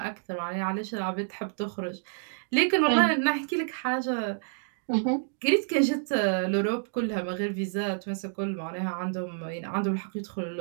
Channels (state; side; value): silent; left; digital silence